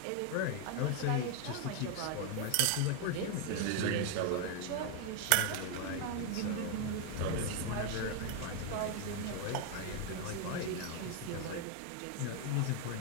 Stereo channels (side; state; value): both; different; correlation 0.01